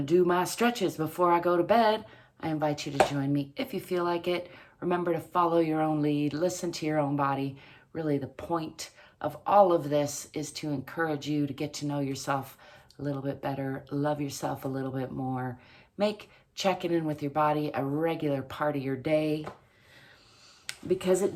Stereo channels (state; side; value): identical; both; correlation 1.00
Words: do my stretches before I go to bed. I invite you to join me if you feel like it. Remember to follow your own lead, listen to your own body. Really, the point of all of this is to encourage you to get to know yourself a little bit better, love yourself a little bit more, make checking in with your body a regular part of your day, because it